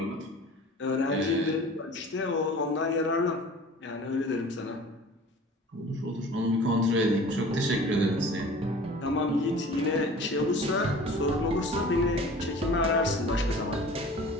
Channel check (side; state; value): both; normal; correlation 0.43